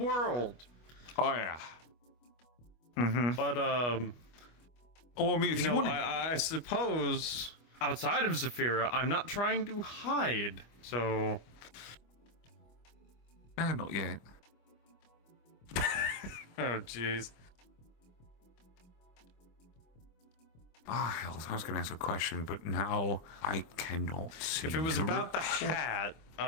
Oh, yeah. Mm-hmm. But, well, I mean, if you want to... I suppose outside of Zafira, I'm not trying to hide, so... Not yet. Oh, jeez. Ah, hell, I was going to ask a question, but now I cannot see. If it was about the hat,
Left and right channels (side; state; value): right; late; 25 ms